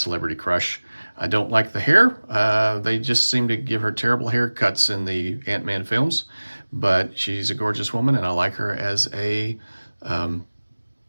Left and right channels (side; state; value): both; inverted; correlation -1.00